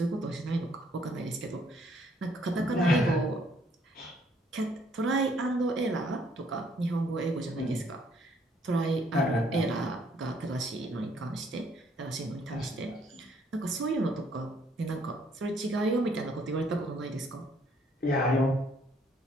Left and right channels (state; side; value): normal; both; correlation 0.66